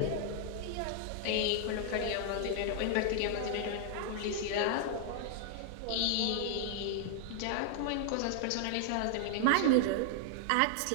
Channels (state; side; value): different; both; correlation -0.01